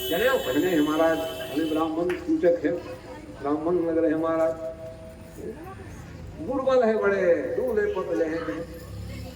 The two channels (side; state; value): both; identical; correlation 1.00